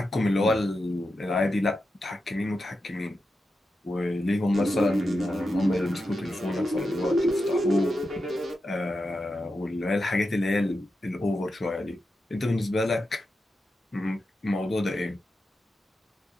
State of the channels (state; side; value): normal; both; correlation 0.89